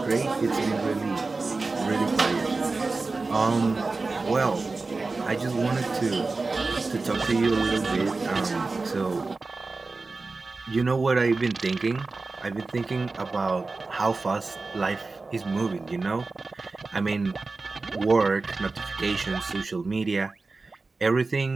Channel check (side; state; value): left; quieter; 3.7 dB